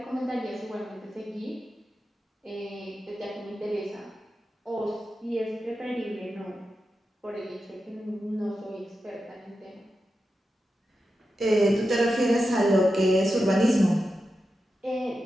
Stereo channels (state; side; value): normal; both; correlation 0.90